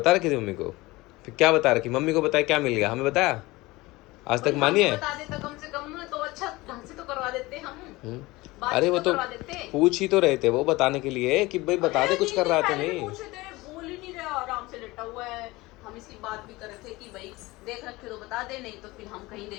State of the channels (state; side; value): quieter; right; 20.9 dB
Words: रखी थी मम्मी को, फिर क्या बता रखी मम्मी को, बताया क्या मिल गया, हमें बताया आज तक मानी है? बता देता कम से कम तो अच्छा ढंग से तो करवा देते हम। अरे वो तो करवा देते। पूछ ही तो रहे थे वो बताने के लिए कि भाई बता दे कुछ कर रहा था नहीं। बोल ही नहीं रहा, आराम से लेटा हुआ है। हम इसकी बात भी कर रहे थे कि भाई देख रखे तो बता दे, नहीं तो फिर हम कहीं